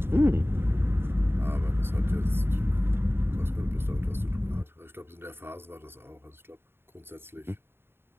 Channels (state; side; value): late; left; 0.11 ms